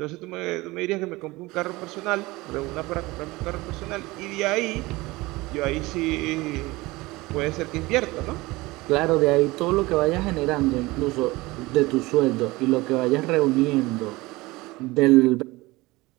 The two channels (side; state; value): left; quieter; 21.1 dB